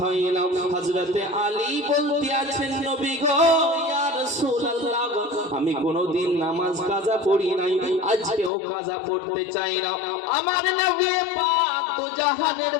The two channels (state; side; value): drops out; right; at 8.5 s